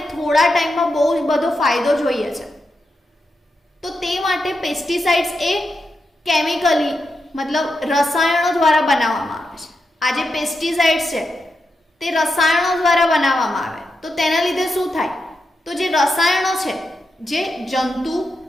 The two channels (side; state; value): both; normal; correlation 0.86